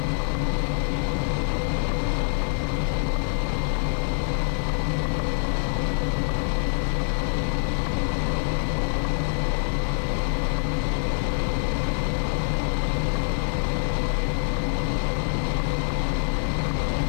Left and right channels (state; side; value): silent; right; digital silence